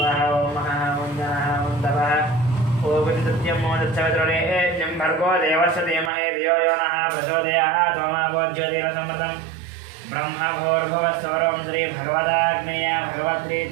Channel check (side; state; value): left; drops out; at 6.1 s